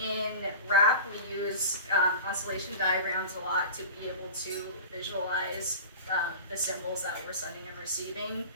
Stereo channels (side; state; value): both; inverted; correlation -0.34